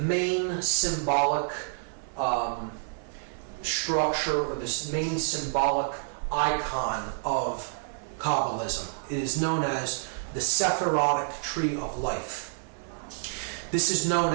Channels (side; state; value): left; silent; digital silence